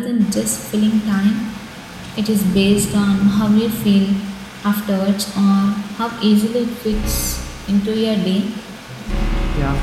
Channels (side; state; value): both; identical; correlation 1.00